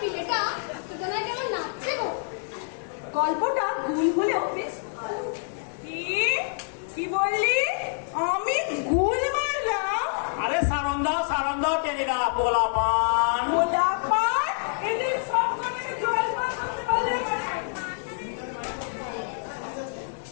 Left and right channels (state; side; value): silent; right; 60 dB below the other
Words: পিলেটা সুতরাং কেমন নাচছে গো? গল্পটা ভুল হলেও বেশ ভালো। কি বললি? আমি গুল মারলাম? আরে সারন দাও টেনিদা, পোলাপান। গোলাপান এদের সব করে জল পান করতে পারলে আমার